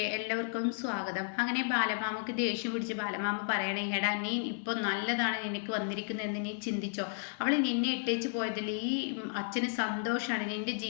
എല്ലാവർക്കും സ്വാഗതം. അങ്ങനെ ബാലമാമക്ക് ദേഷ്യം പിടിച്ച് ബാലമാമ പറയണേ, എടാ നീ ഇപ്പൊ നല്ലതാണ് നിനക്ക് വന്നിരിക്കുന്നതെന്ന് നീ ചിന്തിച്ചോ. അവൾ നിന്നെ ഇട്ടേച്ച് പോയതിൽ ഈ അച്ഛന് സന്തോഷമാണ്, നിന്റെ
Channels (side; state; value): right; silent; 56 dB below the other